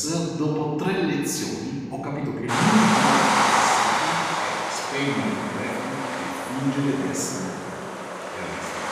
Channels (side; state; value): both; identical; correlation 1.00